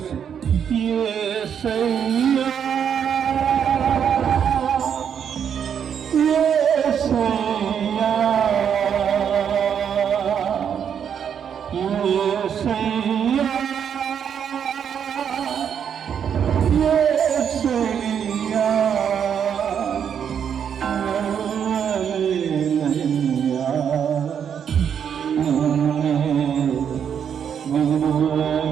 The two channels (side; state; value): left; quieter; 8.1 dB